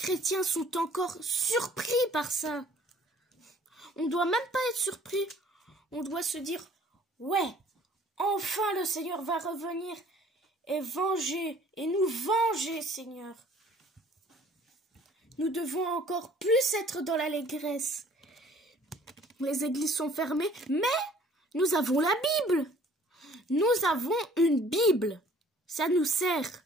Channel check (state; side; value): normal; both; correlation 0.55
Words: sont encore surpris par ça. On ne doit même pas être surpris. On doit se dire, ouais, enfin le Seigneur va revenir et venger, et nous venger, Seigneur. Nous devons encore plus être dans l'allégresse. Les églises sont fermées, mais nous avons la Bible. Nous avons une Bible. Ça nous sert.